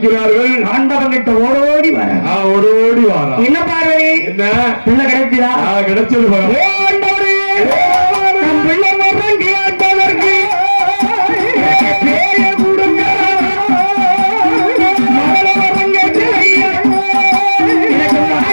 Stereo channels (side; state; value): both; inverted; correlation -1.00